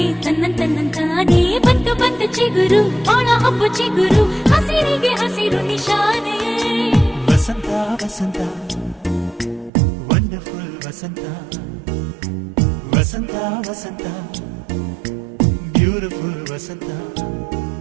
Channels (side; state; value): left; drops out; at 9.7 s